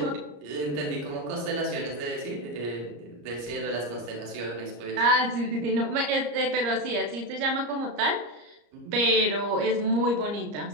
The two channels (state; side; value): late; left; 34 ms